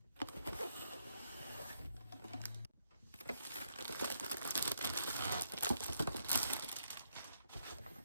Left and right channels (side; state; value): both; inverted; correlation -0.76